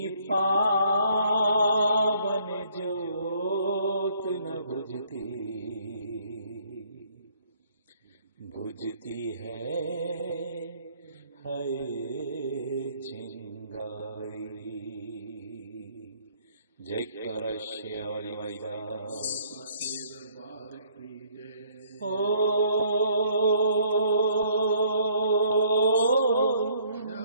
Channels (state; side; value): inverted; both; correlation -0.63